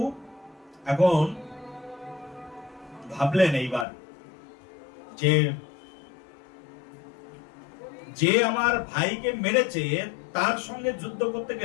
এখন ভাবলেন এইবার যে যে আমার ভাইকে মেরেছে তার সঙ্গে যুদ্ধ করতে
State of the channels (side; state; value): right; drops out; at 3.9 s